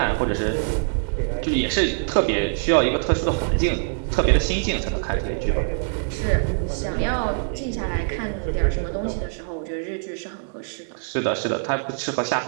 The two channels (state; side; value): silent; left; 63 dB below the other